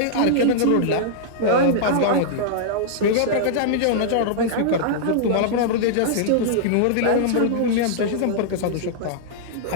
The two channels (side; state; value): both; different; correlation -0.02